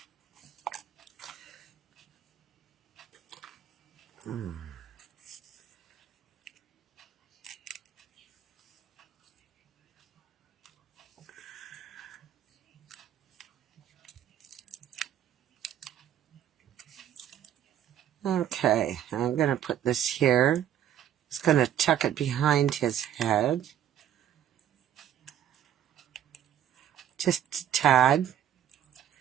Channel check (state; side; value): quieter; left; 10.5 dB